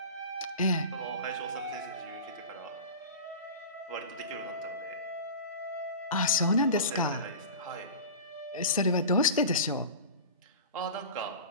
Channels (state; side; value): inverted; both; correlation -0.32